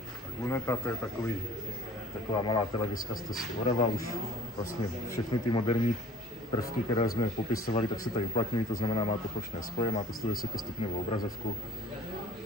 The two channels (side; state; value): both; normal; correlation 0.49